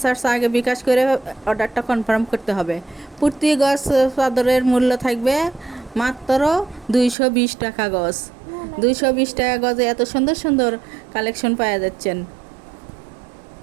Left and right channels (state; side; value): drops out; left; at 7.2 s